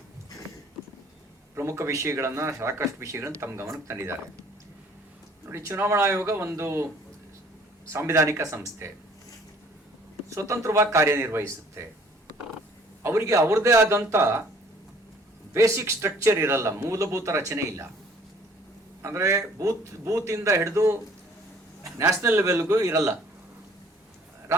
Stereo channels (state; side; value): normal; both; correlation 0.56